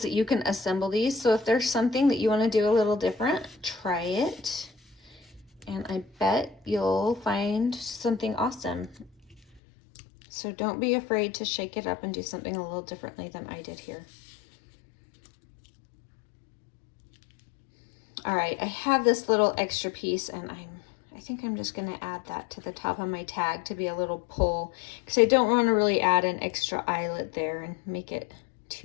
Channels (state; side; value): drops out; right; at 9.6 s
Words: that you can assemble these. So if there's something that you want to do a little different, try it. And I bet you'll find something awesome. So don't be afraid to shake it up and do something a little differently than I did here. All right, I have this little extra piece, and I think I'm just gonna add that to the top of my tag to be a little pull, because I don't want to really add an extra eyelet there and make it